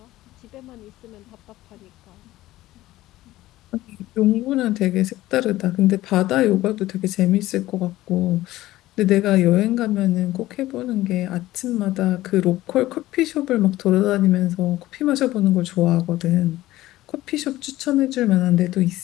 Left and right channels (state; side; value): quieter; right; 16.2 dB